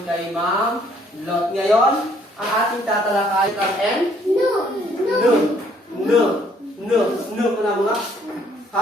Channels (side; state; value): both; normal; correlation 0.64